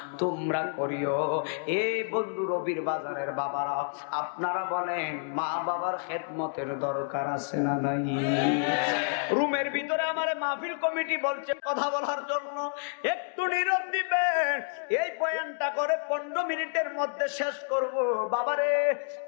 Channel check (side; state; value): right; silent; digital silence